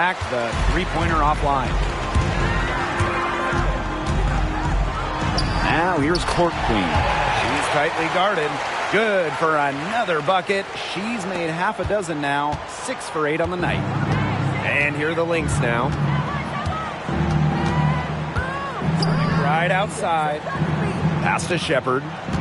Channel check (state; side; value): identical; both; correlation 1.00